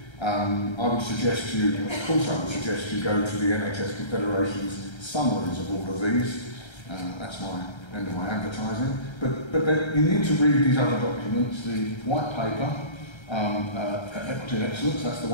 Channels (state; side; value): late; right; 1.3 ms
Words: I would suggest you, of course I would suggest you go to the NHS Confederation's summaries of all of these. That's my end of my advertising. But you need to read these other documents. The white paper, Equity and Excellence, that's the